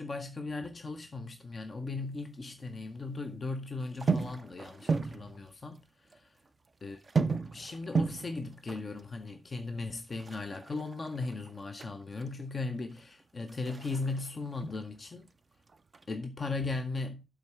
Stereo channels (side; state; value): both; normal; correlation 0.79